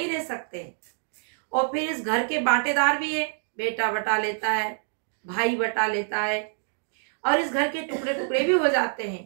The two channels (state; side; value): silent; left; digital silence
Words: रह सकते। और फिर इस घर के बांटेदार भी है, बेटा बटा लेता है, भाई बटा लेता है, और इस घर के टुकड़े टुकड़े भी हो जाते हैं।